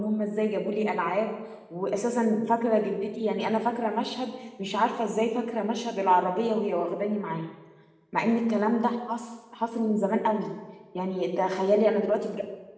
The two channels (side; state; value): both; identical; correlation 1.00